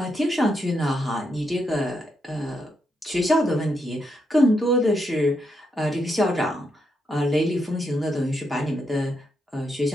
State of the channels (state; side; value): normal; both; correlation 0.81